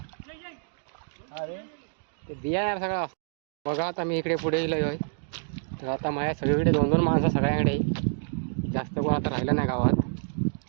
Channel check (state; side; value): silent; left; digital silence